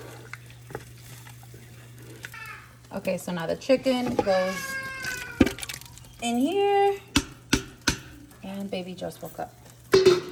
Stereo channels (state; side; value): identical; both; correlation 1.00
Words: Okay, so now the chicken goes in here. And baby just woke up.